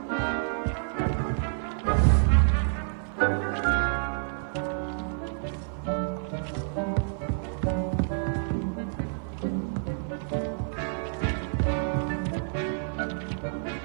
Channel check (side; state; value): left; silent; digital silence